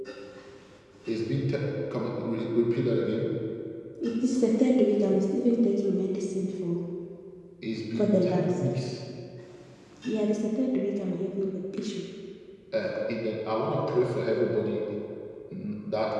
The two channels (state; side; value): identical; both; correlation 1.00